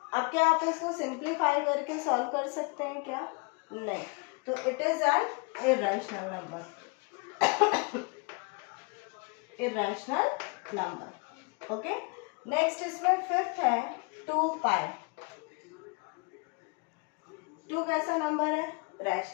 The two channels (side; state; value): right; quieter; 31.7 dB